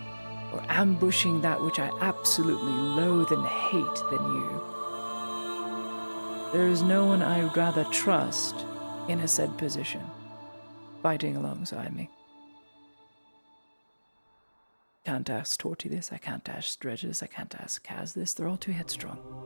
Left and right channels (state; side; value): inverted; both; correlation -1.00